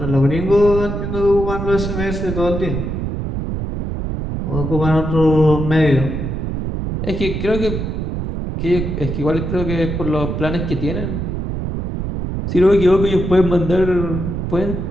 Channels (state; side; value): noise; right; rumble, 3 dB below the sound